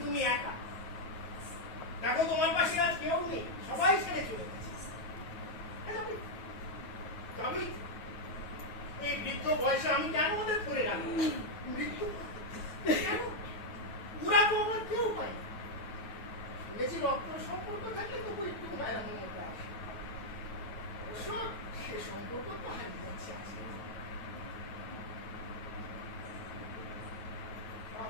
তুমি একা, দেখো তোমার পাশে আজ কেউ নেই, সবাই ছেড়ে চলে গেছে।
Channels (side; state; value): right; late; 9.3 ms